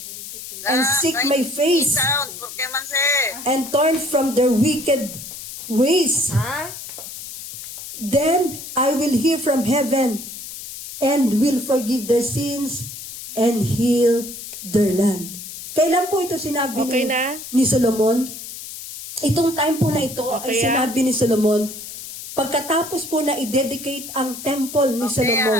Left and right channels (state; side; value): noise; left; hiss, 11 dB below the sound